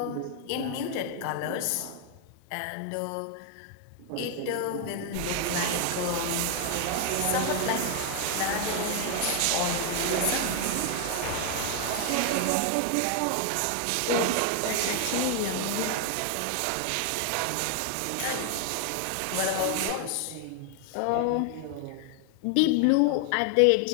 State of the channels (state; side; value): different; both; correlation 0.00